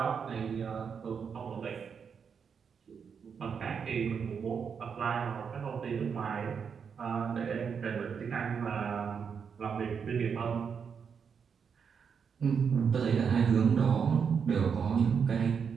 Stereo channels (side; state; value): left; quieter; 6.6 dB